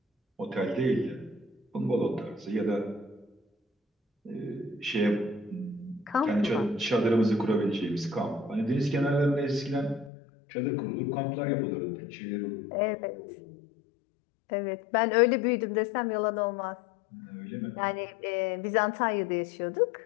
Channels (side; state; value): right; drops out; at 10.1 s